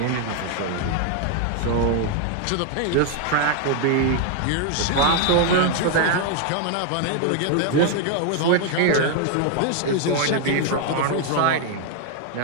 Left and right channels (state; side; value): different; both; correlation 0.00